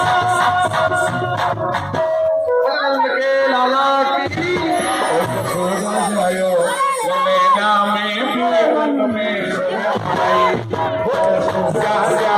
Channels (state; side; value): identical; both; correlation 1.00